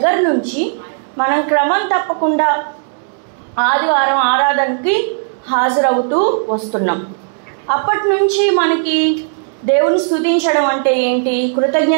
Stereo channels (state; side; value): silent; left; digital silence